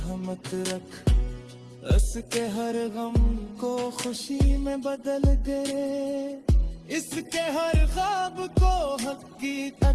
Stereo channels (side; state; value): both; identical; correlation 1.00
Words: रख, उसके हर गम को खुशी में बदल दे, इसके हर ख्वाब को